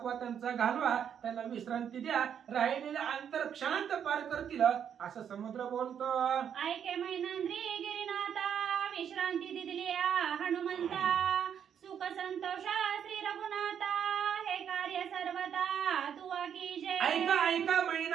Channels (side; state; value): left; quieter; 8.5 dB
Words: त्यांचा घालवा, त्यांना विश्रांती द्या, राहिलेलं अंतर क्षणात पार करतील असं समुद्र बोलतो. ऐके मैनंद्री गिरिनाथा, विश्रांती दिली या हनुमंता, सुख संतोष श्री रघुनाथा, हे कार्य सर्वता तुवा कीजे. ऐका ऐका